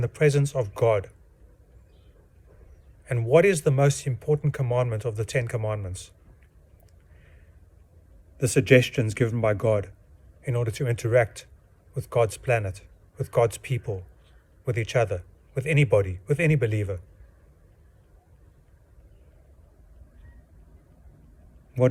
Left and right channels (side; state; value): both; identical; correlation 1.00